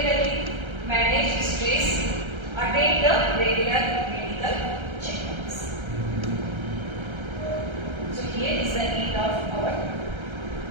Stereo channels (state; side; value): late; left; 1.3 ms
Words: manage stress, attend the regular medical checkups. So here is the end of our